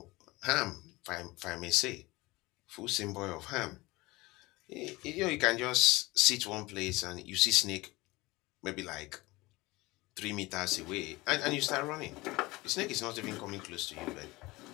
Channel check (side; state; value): right; quieter; 21.4 dB